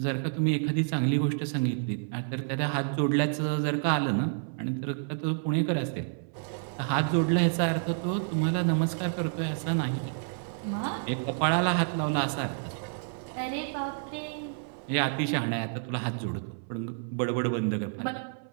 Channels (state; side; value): silent; left; 58 dB below the other